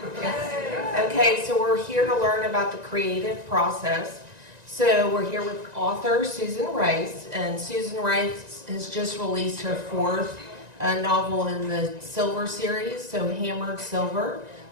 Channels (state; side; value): late; left; 1.9 ms